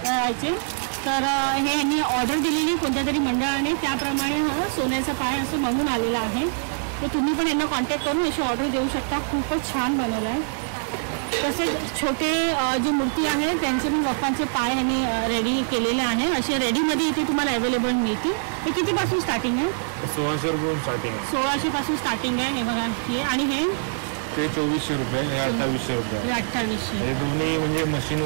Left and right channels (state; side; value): silent; left; 63 dB below the other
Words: याचे. तर हे यांनी ऑर्डर दिलेली कोणत्या तरी मंडळाने, त्याप्रमाणे हा सोन्याचा पाय असं बनवून आलेला आहे. तर तुम्ही पण यांना कॉन्टॅक्ट करून अशी ऑर्डर देऊ शकता. खूपच छान बनवलं आहे. तसेच छोटे जी मूर्ती आहे त्यांचे पण बाप्पांचे पाय यांनी रेडी केलेले आहे. असे रेडीमध्ये इथे तुम्हाला अवेलेबल मिळतील. हे कितीपासून स्टार्टिंग आहे? 1600 रुपये स्टार्टिंग आहे. 1600 पासून स्टार्टिंग आहे. हे बघा हे. आणि हे 2400 रुपये, हे 2800 रुपये. 2800. हे दोन्ही म्हणजे मशीन